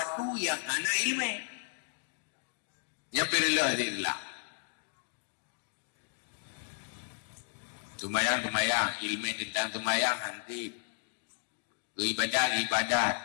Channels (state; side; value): silent; right; digital silence